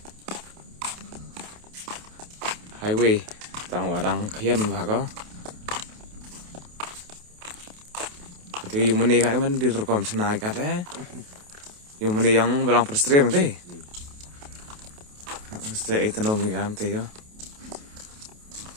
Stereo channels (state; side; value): late; left; 28 ms